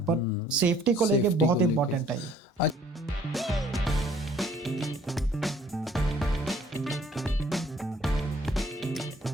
पर सेफ्टी को लेके बहुत इंपॉर्टेंट है ये।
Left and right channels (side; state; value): both; normal; correlation 0.57